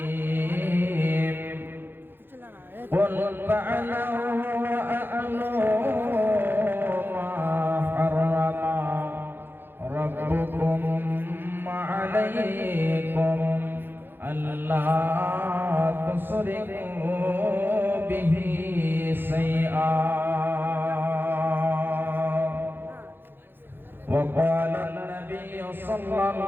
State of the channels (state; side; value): late; left; 0.10 ms